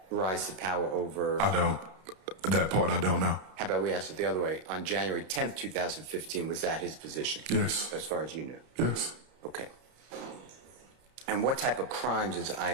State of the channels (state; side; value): late; left; 32 ms